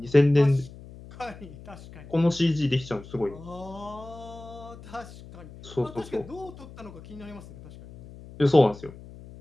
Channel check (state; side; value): noise; left; hum, 17 dB below the sound